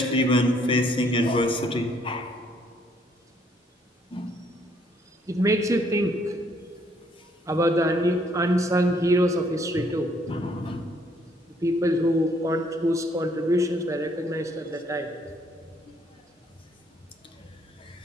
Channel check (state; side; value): normal; both; correlation 0.67